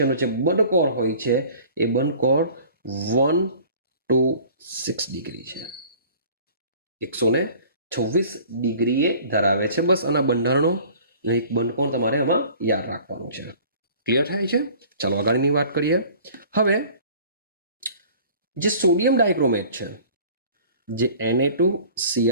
જે બંધકોણ હોય છે એ બંધકોણ 1 to 6 ડિગ્રી છે. 126 ડિગ્રીએ ધરાવે છે. બસ આના બંધારણો એક બંધકોણ તમારે આમાં યાદ રાખવાનું છે. ક્લિયર થાય છે? ચાલો આગળની વાત કરીએ. હવે જે સોડિયમ ડાયક્રોમેટ છે, જે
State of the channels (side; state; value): both; inverted; correlation -0.48